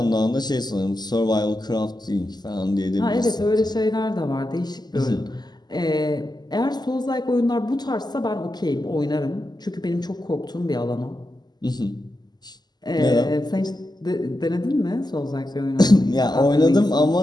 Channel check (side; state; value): right; late; 0.20 ms